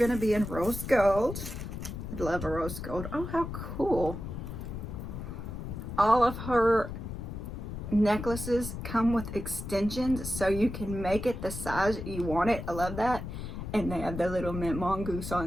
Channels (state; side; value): noise; left; rumble, 7 dB below the sound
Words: to be in rose gold. I'd love a rose gold. Oh, how cool. All of her necklaces come with extensions, so you can make it the size you want it. I love that. And they have the little mint mongoose